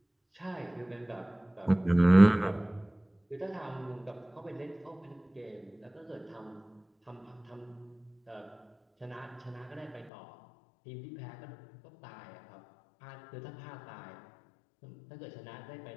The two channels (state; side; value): drops out; right; at 10.1 s